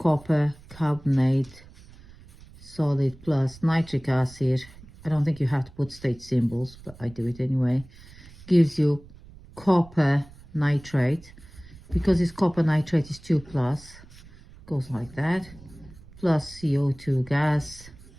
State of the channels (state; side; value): noise; right; rumble, 21 dB below the sound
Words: carbonate solid plus nitric acid. I don't think you have to put state symbols, but I do it anyway. Gives you copper nitrate. Because it's copper nitrate is 2+, goes like that, plus CO2 gas